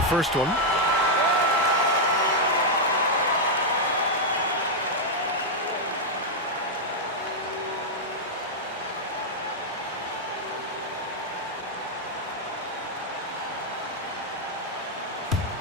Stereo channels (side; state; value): both; normal; correlation -0.03